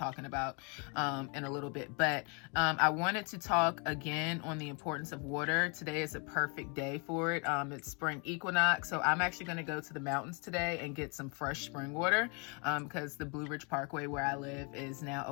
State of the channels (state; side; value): quieter; right; 34.5 dB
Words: about in a little bit. But I wanted to talk again on the importance of water. Today is a perfect day for it. It's spring equinox, so I'm actually going to go to the mountains today and get some fresh spring water because the Blue Ridge Parkway where I live is now